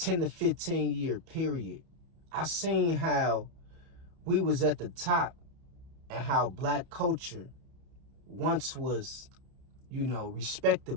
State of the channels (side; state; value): left; late; 31 ms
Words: to 15 year period. I seen how we was at the top and how black culture once was,